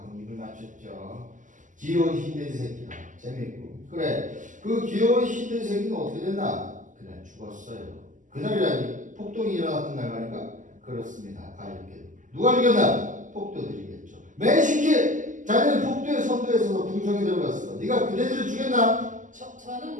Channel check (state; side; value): late; left; 0.37 ms